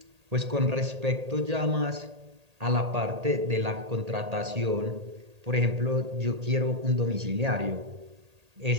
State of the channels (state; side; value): late; left; 1.8 ms